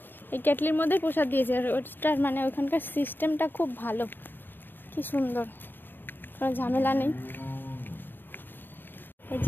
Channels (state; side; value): late; right; 0.094 ms